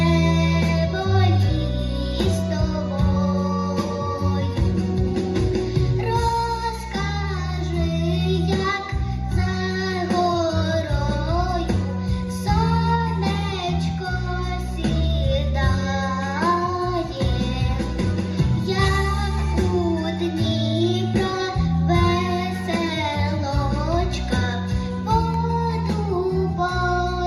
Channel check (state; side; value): identical; both; correlation 1.00